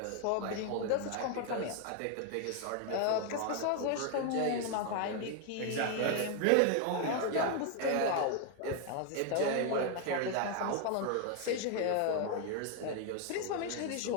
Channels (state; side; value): different; both; correlation 0.01